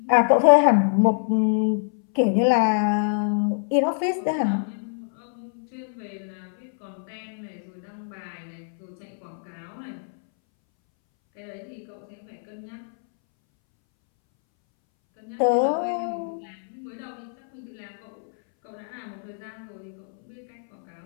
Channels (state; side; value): silent; right; 62 dB below the other